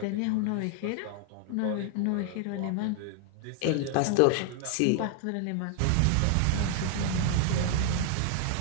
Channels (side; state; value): both; different; correlation 0.00